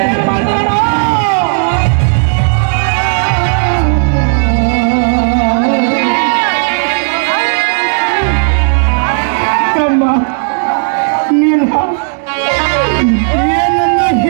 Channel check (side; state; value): left; silent; 63 dB below the other